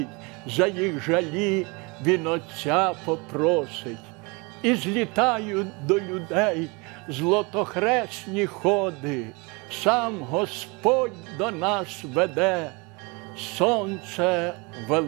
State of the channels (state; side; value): quieter; left; 28.3 dB